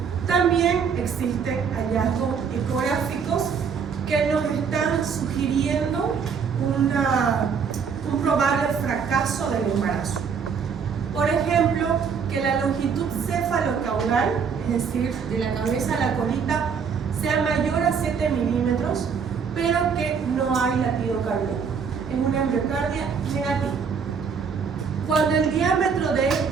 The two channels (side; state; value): left; quieter; 6.3 dB